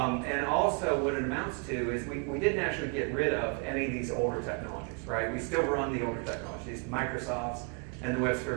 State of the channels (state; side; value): quieter; left; 36.2 dB